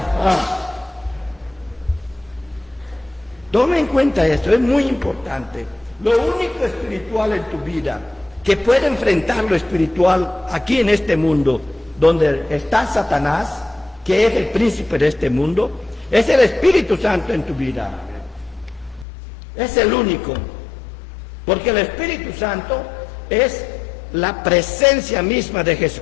Toma en cuenta esto, es muy importante. Lo único espiritual en tu vida que puede enfrentar lo espiritual aquí en este mundo, donde está Satanás, que es el príncipe de este mundo, es el Espíritu Santo en tu vida. Es el único. Porque el Espíritu Santo es la presencia misma de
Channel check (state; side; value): drops out; right; at 19.1 s